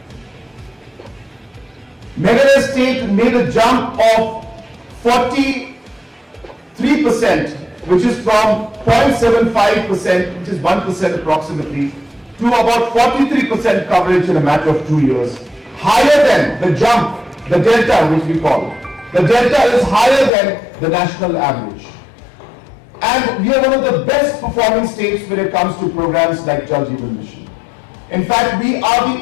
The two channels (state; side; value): drops out; right; at 20.3 s